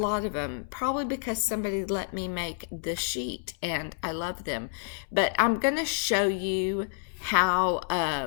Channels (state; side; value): silent; right; 59 dB below the other